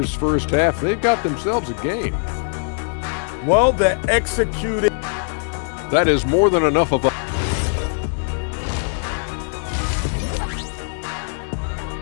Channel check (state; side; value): silent; right; 62 dB below the other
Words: first half, they've got themselves a game. Well, they're executing. That is more than enough of a...